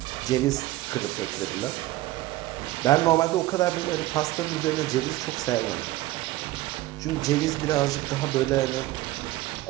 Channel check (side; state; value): left; quieter; 17.0 dB